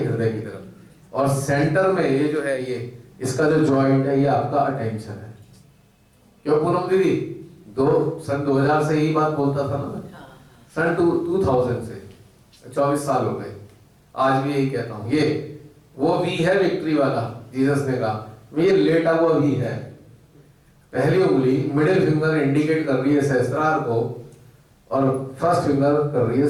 हृदय की तरफ, और सेंटर में ये जो है, ये इसका जो जॉइंट है, ये आपका अटेंशन है। क्यों पूनम दीदी? सन 2000 से यही बात बोलता था ना मैं, सन 2000 से 24 साल हो गए, आज भी यही कहता हूँ। ये वो वी है विक्ट्री वाला, जीसस ने कहा ये लेटा हुआ वी है। पहली उंगली मिडिल फिंगर इंडिकेट कर रही है सहस्त्रार को, और फर्स्ट फिंगर कर रही है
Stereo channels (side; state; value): both; identical; correlation 1.00